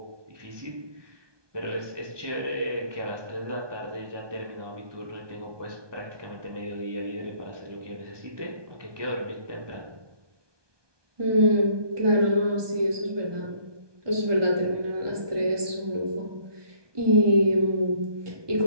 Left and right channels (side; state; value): left; late; 1.2 ms